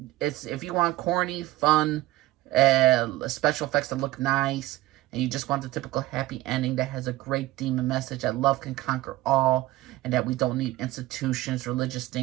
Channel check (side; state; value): left; quieter; 17.4 dB